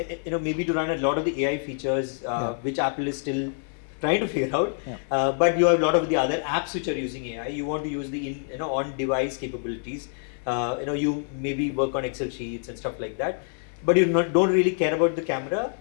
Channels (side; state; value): right; silent; digital silence